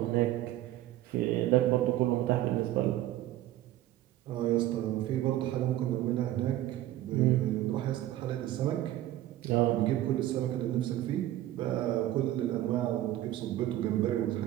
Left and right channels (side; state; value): left; quieter; 14.2 dB